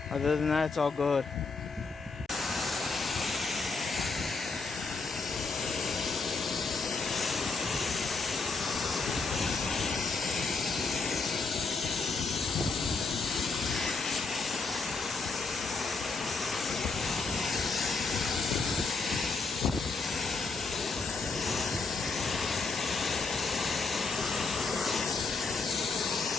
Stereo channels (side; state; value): right; quieter; 4.2 dB